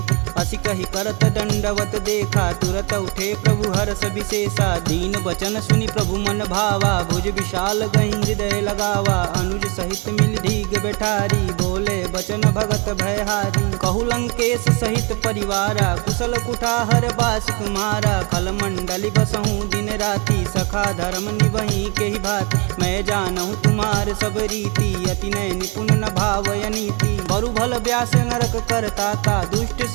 असी कही करत दंडवत देखा तुरत उठे प्रभु हर्ष विशेषा। दीन बचन सुनि प्रभु मन भावा भुज विशाल गही हृदय लगावा। अनुज सहित मिल धीग बैठारी बोले बचन भगत भयहारी। कहु लंकेश सहित परिवारा कुशल कुठाहर बास तुम्हारा। खल मंडली बसहूँ दिन राति सखा धर्म निबही के ही भात। मैं जानहूँ तुम्हार सब रीति अति नय निपुण न भावय नीति। बरु भल व्यास नरक करताता दुष्ट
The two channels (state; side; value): quieter; left; 30.7 dB